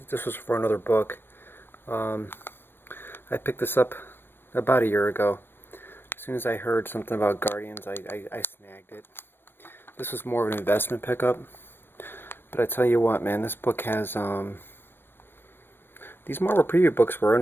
was for another book. I picked this up about a year ago. As soon as I heard something about Guardians, I snagged it. This was more of an investment pickup. But I tell you what, man, this book has these Marvel Preview books were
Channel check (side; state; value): right; late; 0.10 ms